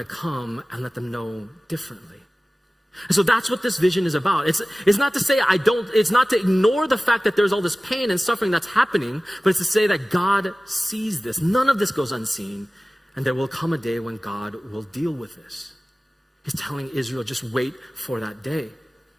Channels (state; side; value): normal; both; correlation 0.97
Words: come and let them know differently. And so that's what this vision is about. It's not to say it's not to ignore the fact that there's all this pain and suffering that's happening, but it's to say that God sees this. None of this goes unseen. And there will come a day when God will deal with this. He's telling Israel, just wait for that day.